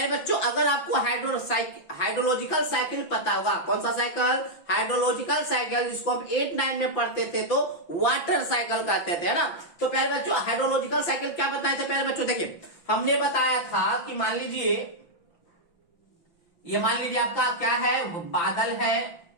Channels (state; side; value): late; right; 5.9 ms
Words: बच्चों, अगर आपको हाइड्रोलॉजिकल साइकिल पता होगा, कौन सा साइकिल? हाइड्रोलॉजिकल साइकिल, जिसको हम 8-9 में पढ़ते थे तो वाटर साइकिल कहते थे, है ना। तो पहले बच्चों, हाइड्रोलॉजिकल साइकिल क्या बताए थे? पहले बच्चों देखिए, हमने बताया था कि मान लीजिए आपका क्या है, बादल है,